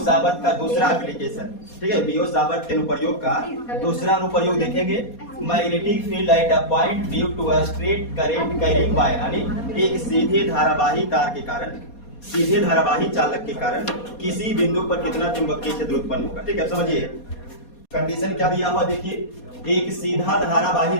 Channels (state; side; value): late; right; 4.2 ms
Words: का दूसरा application, ठीक है। बीओ साबत के अनुप्रयोग का दूसरा अनुप्रयोग देखेंगे। Magnetic field at a point due to a straight current carrying wire, यानी एक सीधे धारावाही तार के कारण, सीधे धारावाही चालक के कारण किसी बिंदु पर कितना चुंबकीय क्षेत्र उत्पन्न होगा। ठीक है, समझिए कंडीशन क्या दिया हुआ। देखिए एक सीधा धारावाही